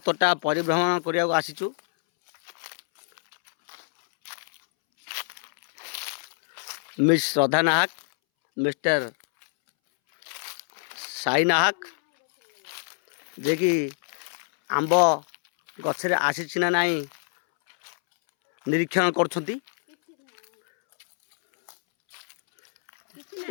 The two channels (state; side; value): silent; right; 61 dB below the other